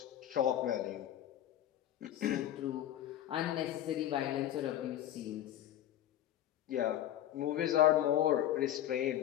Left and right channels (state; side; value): quieter; right; 12.1 dB